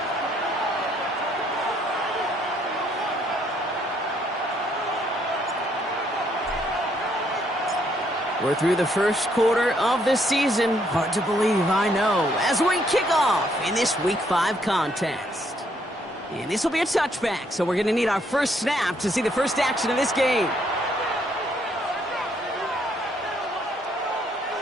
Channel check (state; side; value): normal; both; correlation 0.70